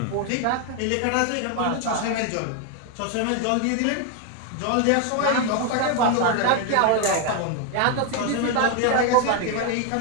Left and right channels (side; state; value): both; different; correlation 0.01